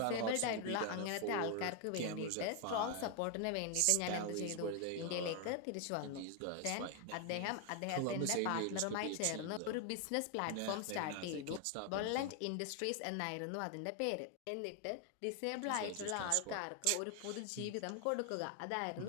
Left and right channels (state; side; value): different; both; correlation 0.01